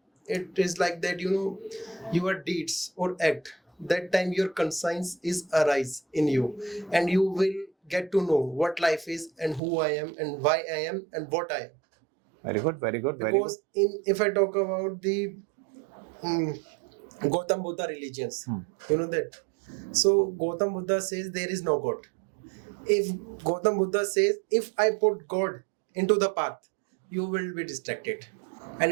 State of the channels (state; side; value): drops out; left; at 9.6 s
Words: It is like that, your deeds or act, that time your conscience is arise in you, and you will get to know what life is and who I am and why I am and what I am. Very good, very good, very Because if I talk about the Gautam Buddha religions, that. So Gautam Buddha says there is no God. If Gautam Buddha says, if I put God into the path, you will be distracted. And